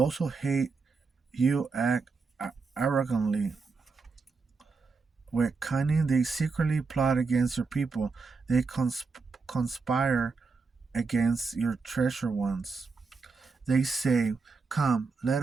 who hate you act arrogantly. With cunning, they secretly plot against your people. They conspire against your treasure ones. They say, come, let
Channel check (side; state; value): left; quieter; 4.5 dB